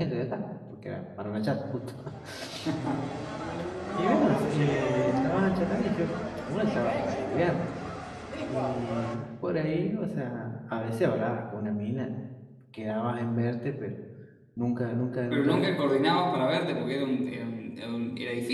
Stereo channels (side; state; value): both; identical; correlation 1.00